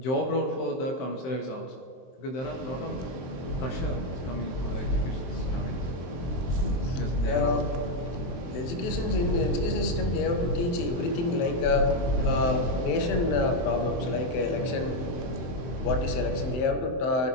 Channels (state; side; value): late; right; 23 ms